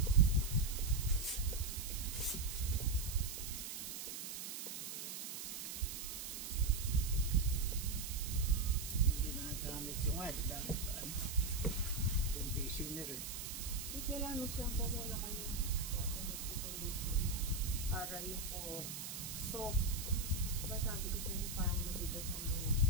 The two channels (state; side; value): noise; right; hiss, 6 dB below the sound